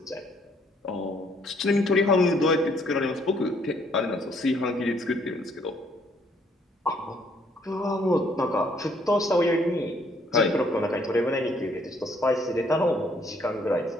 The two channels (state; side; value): normal; both; correlation 0.66